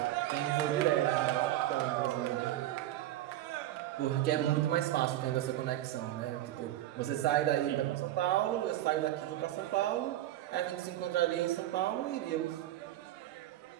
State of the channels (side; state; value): left; quieter; 13.9 dB